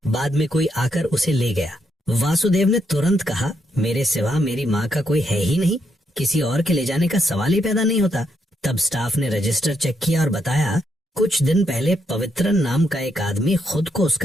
बाद में कोई आकर उसे ले गया। वासुदेव ने तुरंत कहा, मेरे सिवा मेरी माँ का कोई है ही नहीं, किसी और के ले जाने का सवाल ही पैदा नहीं होता। तब स्टाफ ने रजिस्टर चेक किया और बताया, कुछ दिन पहले पवित्रन नाम का एक आदमी खुद को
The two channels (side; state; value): both; normal; correlation 0.78